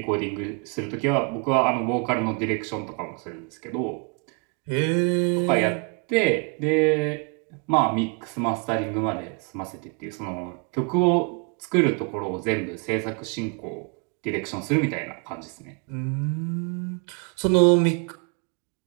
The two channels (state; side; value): quieter; left; 35.2 dB